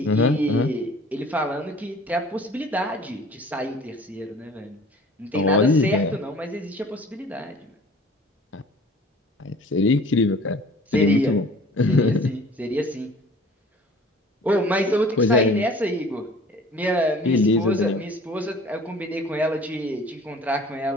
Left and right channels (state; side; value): normal; both; correlation 0.47